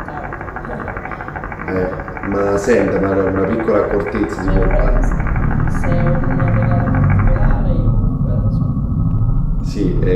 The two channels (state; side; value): identical; both; correlation 1.00